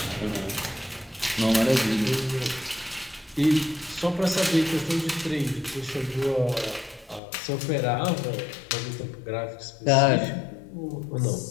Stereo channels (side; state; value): right; drops out; at 7.2 s